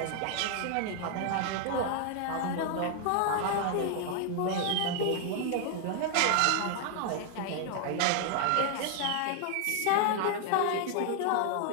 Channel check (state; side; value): different; both; correlation 0.00